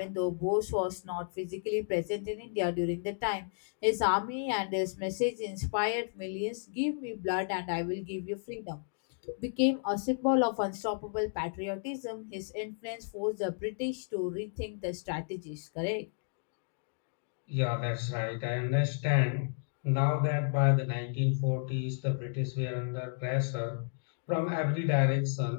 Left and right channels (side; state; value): right; silent; digital silence